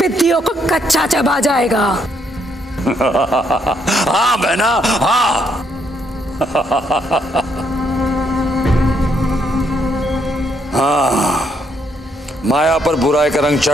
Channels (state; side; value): normal; both; correlation 0.74